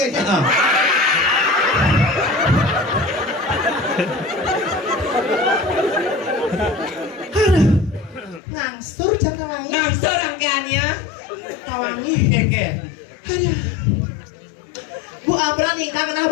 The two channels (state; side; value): drops out; right; at 8.4 s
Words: kayaknya. Ngangsur jam tawangi. Nangsur rangkaiannya. Tawangi. Oke. Aduh. Bu Abra nikah kenal